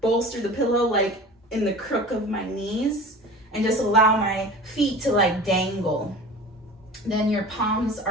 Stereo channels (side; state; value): both; normal; correlation 0.38